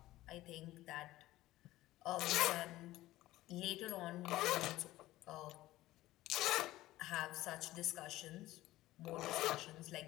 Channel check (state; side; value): quieter; right; 16.5 dB